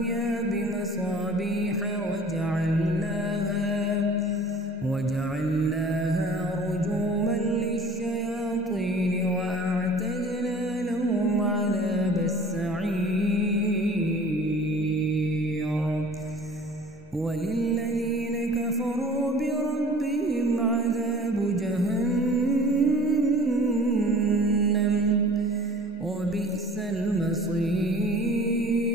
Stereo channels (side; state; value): both; normal; correlation 0.46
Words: بمصابيح وجعلناها رجوما للشياطين وأعتدنا لهم عذاب السعير وللذين كفروا بربهم عذاب جهنم وبئس المصير